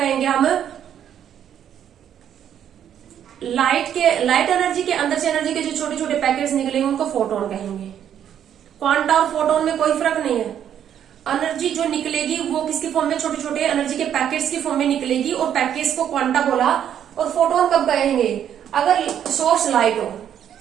हम, लाइट एनर्जी के अंदर से एनर्जी के जो छोटे छोटे पैकेट्स निकलेंगे उनको फोटोन कहेंगे। क्वांटा और फोटोन में कोई फर्क नहीं है, एनर्जी जो निकलेगी वो किसकी फॉर्म में, छोटे छोटे एनर्जी के पैकेट्स की फॉर्म में निकलेगी, और पैकेट्स को क्वांटा बोला। और फोटोन कब कहेंगे, अगर सोर्स लाइट हो,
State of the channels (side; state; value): left; quieter; 9.6 dB